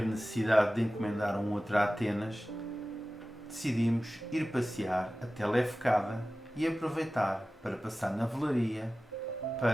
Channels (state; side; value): normal; both; correlation 0.96